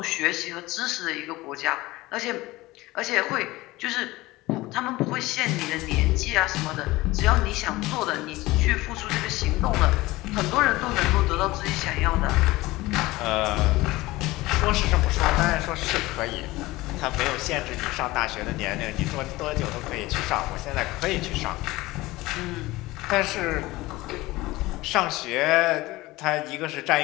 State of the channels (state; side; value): quieter; right; 19.4 dB